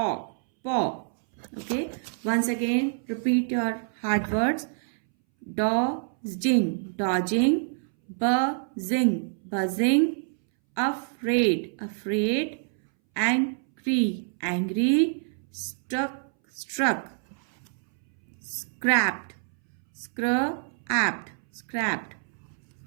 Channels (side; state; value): left; silent; 60 dB below the other